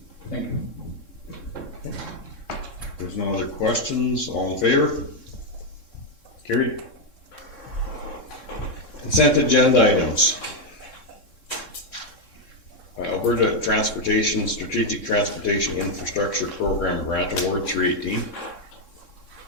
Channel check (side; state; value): right; late; 3.7 ms